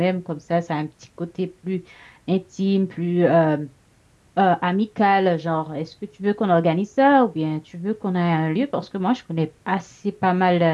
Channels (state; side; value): identical; both; correlation 1.00